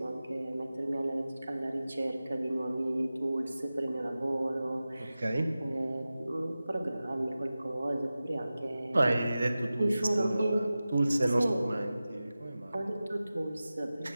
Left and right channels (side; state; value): both; inverted; correlation -0.95